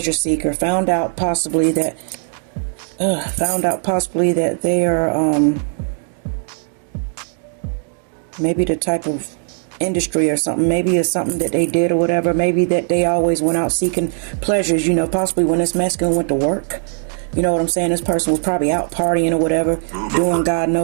seeker. Found out possibly that they are maybe the type of industry or something. Maybe it's something that they did or whatever. Maybe that they always went out seeking pleasures, you know, possibly when this masculine went to work. You know what I'm saying? This person was probably out partying or whatever, doing God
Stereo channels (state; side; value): silent; left; 55 dB below the other